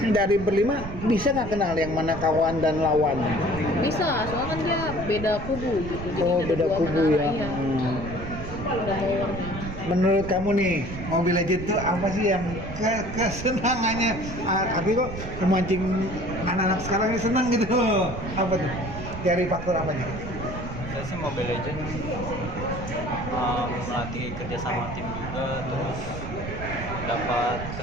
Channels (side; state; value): right; noise; rumble, 8 dB below the sound